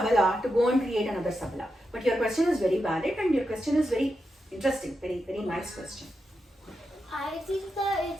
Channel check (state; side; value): normal; both; correlation 0.87